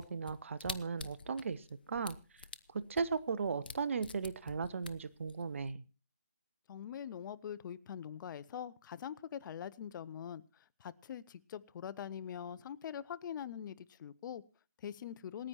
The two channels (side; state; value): both; inverted; correlation -0.63